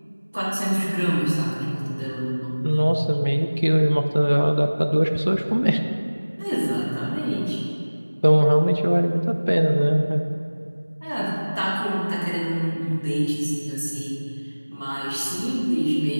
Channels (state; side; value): inverted; both; correlation -1.00